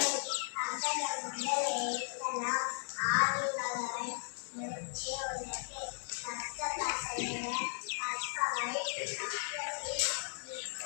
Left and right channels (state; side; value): silent; right; 54 dB below the other